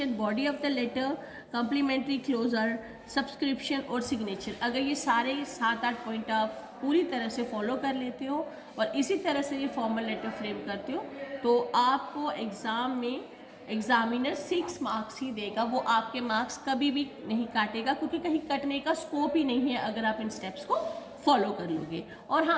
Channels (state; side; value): identical; both; correlation 1.00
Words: body of the letter, complimentary closure, subscription और सिग्नेचर, अगर ये सारे 7-8 पॉइंट आप पूरी तरह से फॉलो कर लेते हो और इसी तरह से ये फॉर्मल लेटर फ्रेम करते हो, तो आपको एग्ज़ाम में एग्जामिनर 6 मार्क्स ही देगा, वो आपके मार्क्स कभी भी नहीं काटेगा, क्योंकि कहीं कटने का स्कोप ही नहीं है अगर आप इन स्टेप्स को फॉलो कर लोगे। और